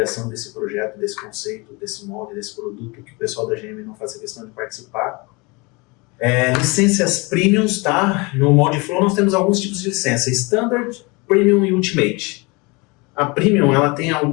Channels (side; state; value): right; quieter; 27.3 dB